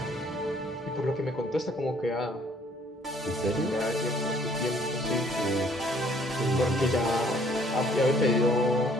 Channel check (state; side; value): normal; both; correlation 0.61